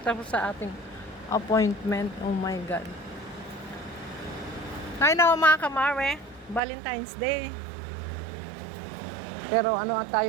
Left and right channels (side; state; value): left; drops out; at 6.6 s